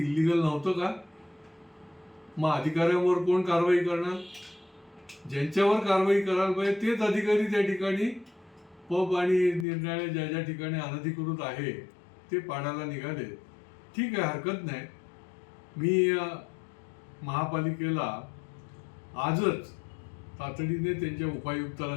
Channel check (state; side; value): drops out; right; at 9.7 s